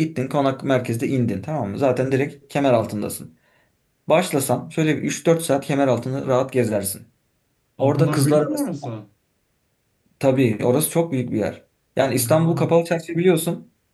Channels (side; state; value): both; identical; correlation 1.00